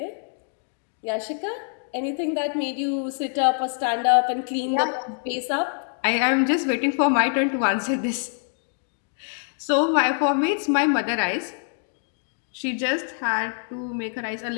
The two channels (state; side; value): silent; right; 61 dB below the other